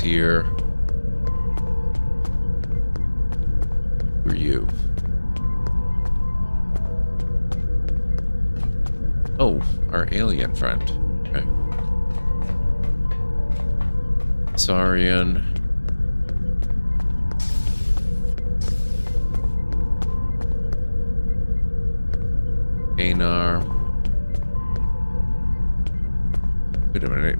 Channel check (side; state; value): both; inverted; correlation -1.00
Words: Who are you? Oh, our alien friend. Okay. Saurian. Anar. Wait a minute,